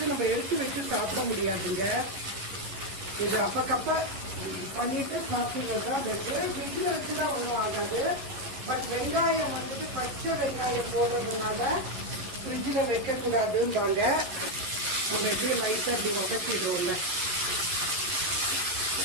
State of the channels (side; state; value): left; late; 11 ms